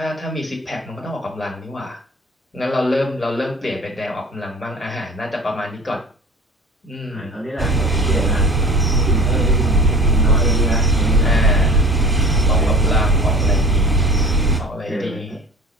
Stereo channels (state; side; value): normal; both; correlation 0.40